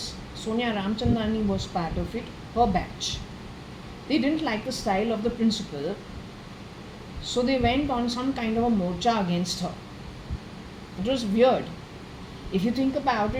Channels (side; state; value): both; identical; correlation 1.00